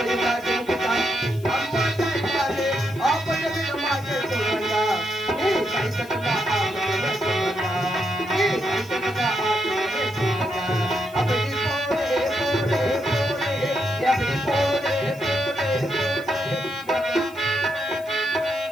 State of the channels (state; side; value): noise; left; hiss, 23 dB below the sound